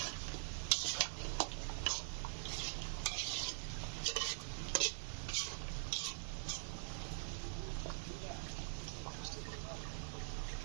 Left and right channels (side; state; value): left; silent; digital silence